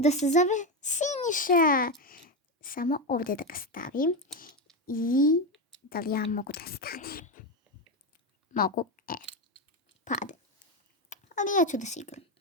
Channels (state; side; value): normal; both; correlation 0.12